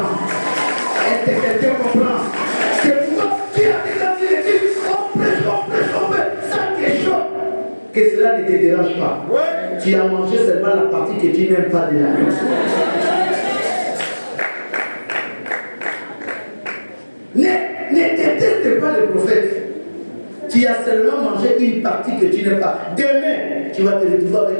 Est-ce que quelqu'un comprend? Que cela ne te dérange pas. Ouais. Tu as mangé seulement la partie que tu n'aimes pas de la vie. Ne déteste pas le prophète. Tu as seulement mangé une partie que tu n'aimes pas. Demain, tu vas te retrouver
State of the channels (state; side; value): inverted; both; correlation -1.00